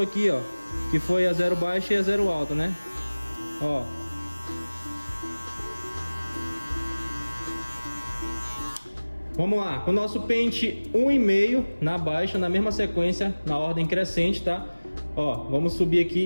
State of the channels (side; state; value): both; inverted; correlation -1.00